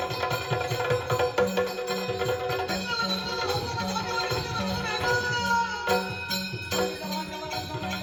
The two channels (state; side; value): identical; both; correlation 1.00